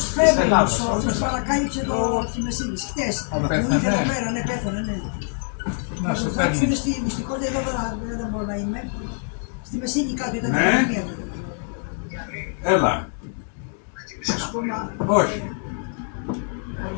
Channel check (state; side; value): silent; right; 57 dB below the other